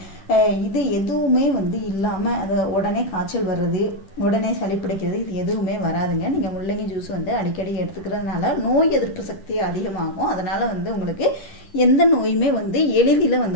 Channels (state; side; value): late; right; 10 ms